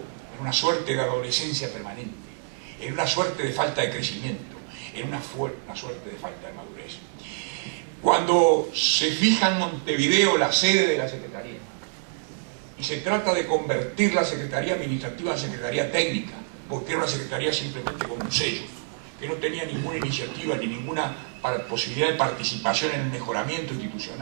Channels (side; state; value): left; silent; 60 dB below the other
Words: en una suerte de adolescencia permanente, en una suerte de falta de crecimiento, en una suerte de falta de madurez. Cuando se fija en Montevideo la sede de la Secretaría y se trata de convertir la Secretaría Administrativa en Secretaría Técnica, porque era una Secretaría simplemente con un sello, que no tenía ninguna iniciativa ni ninguna posibilidad de participación en el mejoramiento